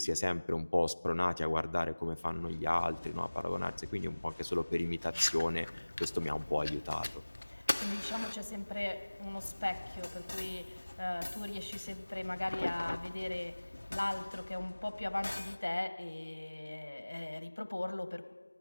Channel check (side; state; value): both; inverted; correlation -1.00